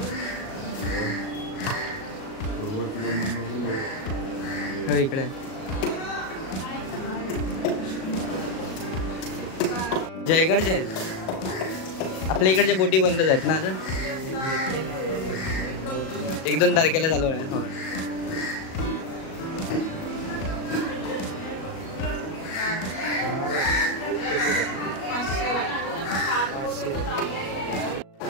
इकडे जयगडचे आहेत, आपल्या इकडच्या बोटी बंदच आहेत ना। आता 1-2 तारखेला चालू आहे।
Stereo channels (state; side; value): late; right; 37 ms